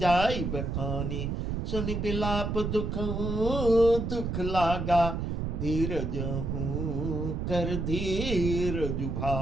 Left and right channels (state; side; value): noise; right; rumble, 2 dB below the sound